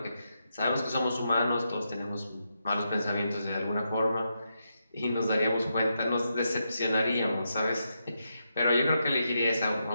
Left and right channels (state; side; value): inverted; both; correlation -0.84